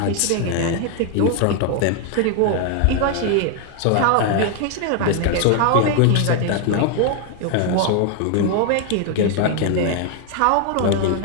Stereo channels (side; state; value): both; different; correlation 0.00